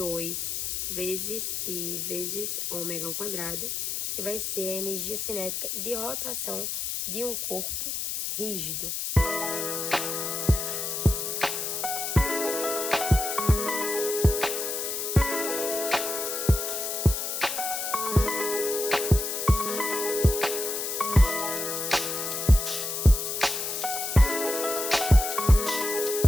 vezes I vezes ômega ao quadrado, que vai ser a energia cinética de rotação de um corpo rígido.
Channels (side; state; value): left; noise; hiss, 3 dB below the sound